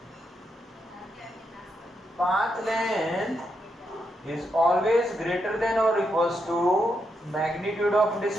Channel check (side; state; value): both; normal; correlation 0.82